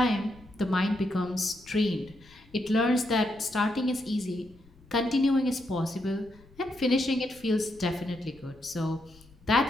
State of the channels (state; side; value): noise; left; rumble, 26 dB below the sound